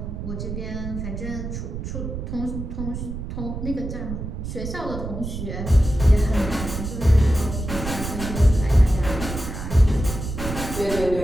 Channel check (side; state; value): right; noise; rumble, 6 dB below the sound